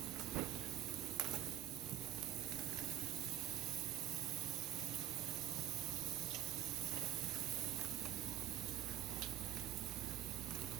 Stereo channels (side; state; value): left; quieter; 12.1 dB